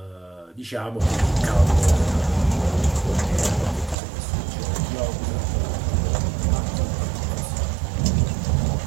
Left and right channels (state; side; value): drops out; left; at 4.0 s